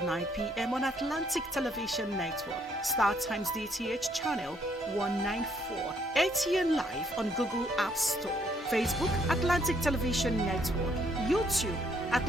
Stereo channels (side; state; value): both; normal; correlation 0.69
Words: 9 p.m. on Atlantic Television Network, Star Times DTH channel 194, ATN Live on Google App Store, Facebook Atlantic Television Network, YouTube